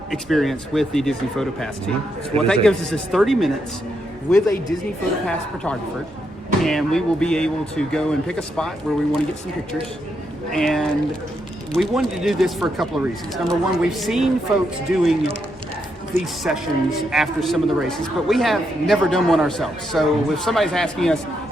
experience with the Disney PhotoPass team. So what that gives us is 30 minutes with a Disney PhotoPass photographer, and we will be able to go and pick a spot where we want to get some pictures. And we wanted to do this for a couple of reasons. Number one, we've seen folks doing these sessions after some of the races, but we have never done one ourselves. So if somebody's asking us,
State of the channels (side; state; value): both; normal; correlation 0.80